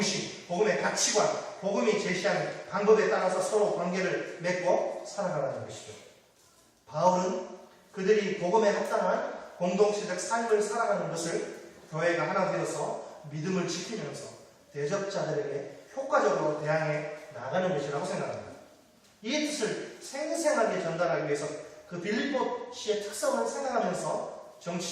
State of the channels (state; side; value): identical; both; correlation 1.00